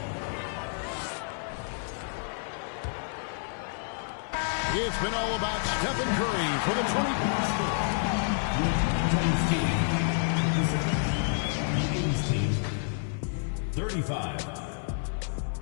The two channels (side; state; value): right; silent; 58 dB below the other